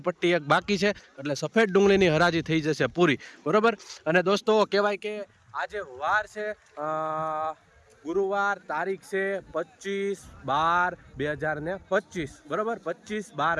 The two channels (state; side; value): identical; both; correlation 1.00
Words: પટ્ટી એક બાકી છે, એટલે સફેદ ડુંગળીની હરાજી થઈ જશે પૂરી, બરોબર. અને દોસ્તો, કહેવાય કે આજે વાર છે ગુરુવાર, તારીખ છે 25/12/2025, બરાબર.